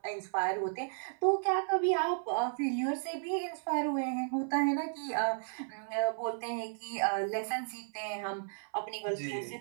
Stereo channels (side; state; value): left; silent; 55 dB below the other